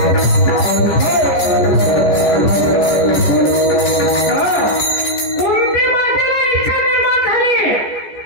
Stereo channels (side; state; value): right; late; 14 ms